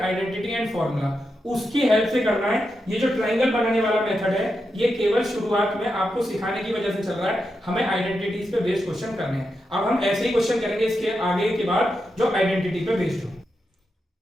identity and formula उसकी हेल्प से करना है। ये जो ट्रायंगल बनाने वाला मेथड है ये केवल शुरुआत में आपको सिखाने की वजह से चल रहा है, हमें आइडेंटिटीज पे बेस्ड क्वेश्चन करने हैं। अब हम ऐसे ही क्वेश्चन करेंगे इसके आगे के बाद जो आइडेंटिटी पे बेस्ड हो।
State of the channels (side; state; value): both; normal; correlation 0.87